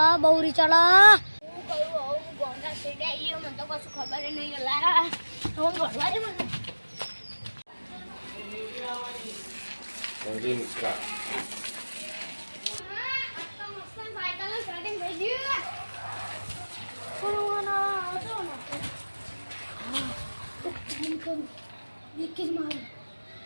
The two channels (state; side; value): inverted; both; correlation -1.00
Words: હું કહ્યું ગોમના શેડે આવીએ મને તો કશું ખબર નહીં અલ્લા તો ઘરવા દે મને